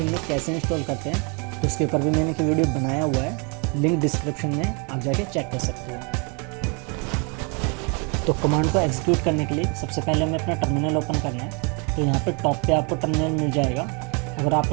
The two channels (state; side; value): quieter; left; 33.9 dB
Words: में कैसे इंस्टॉल करते हैं तो उसके ऊपर भी मैंने एक वीडियो बनाया हुआ है, लिंक डिस्क्रिप्शन में आप जाके चेक कर सकते हो। तो कमांड को एग्जीक्यूट करने के लिए सबसे पहले हमें अपना टर्मिनल ओपन करना है। तो यहाँ पे टॉप पे आपको टर्मिनल मिल जाएगा। अगर